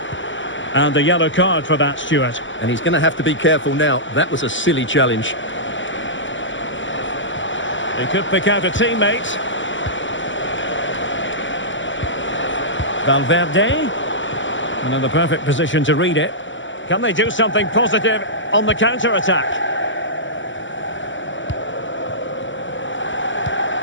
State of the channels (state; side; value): late; right; 0.55 ms